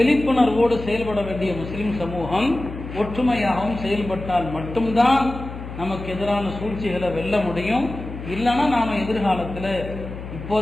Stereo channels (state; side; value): noise; left; hum, 10 dB below the sound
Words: செயல்பட வேண்டிய முஸ்லிம் சமூகம் ஒற்றுமையாகவும் செயல்பட்டால் மட்டும்தான் நமக்கு எதிரான சூழ்ச்சிகளை வெல்ல முடியும். இல்லைன்னா நாம எதிர்காலத்தில்